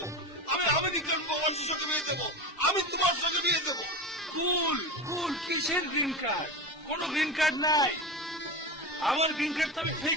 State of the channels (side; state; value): both; normal; correlation 0.24